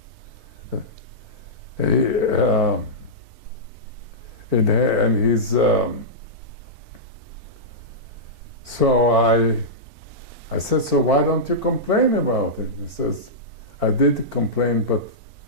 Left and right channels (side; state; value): left; late; 4.5 ms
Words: so I said, so why don't you complain about it? He says, I did complain, but